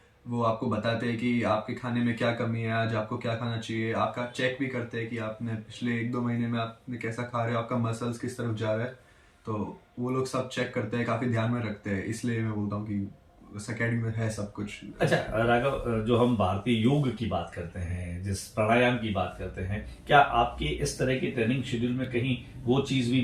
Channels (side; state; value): both; identical; correlation 1.00